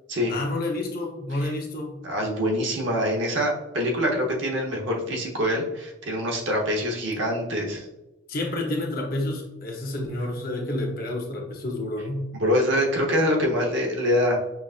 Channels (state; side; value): normal; both; correlation 0.31